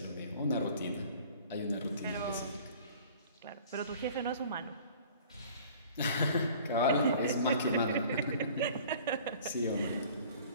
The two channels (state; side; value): inverted; both; correlation -0.48